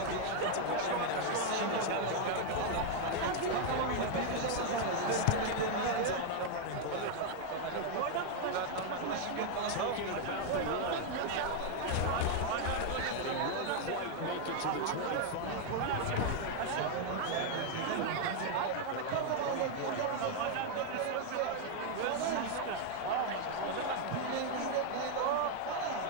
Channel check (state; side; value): different; both; correlation 0.00